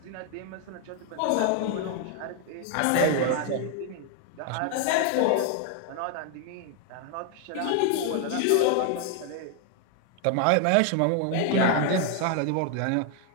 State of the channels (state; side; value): different; both; correlation 0.00